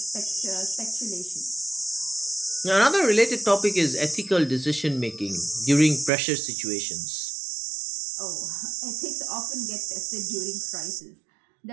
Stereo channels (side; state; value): left; drops out; at 6.1 s